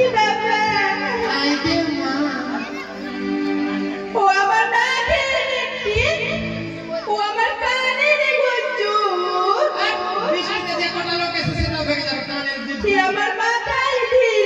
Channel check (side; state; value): both; identical; correlation 1.00